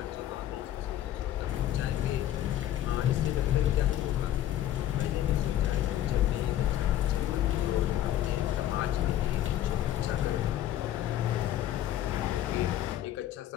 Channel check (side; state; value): right; quieter; 12.3 dB